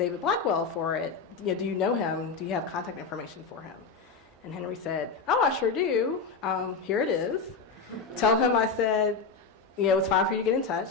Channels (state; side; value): quieter; right; 4.8 dB